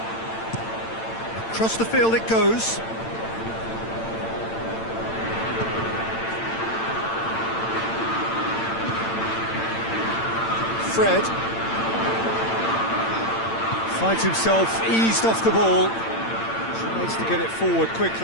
Across the field it goes. Fred finds himself eased off the ball. Tries to get it forward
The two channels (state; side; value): late; right; 8.9 ms